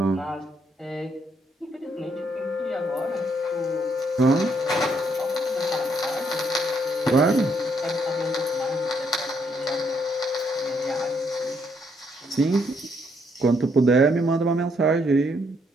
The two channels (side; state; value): both; normal; correlation 0.72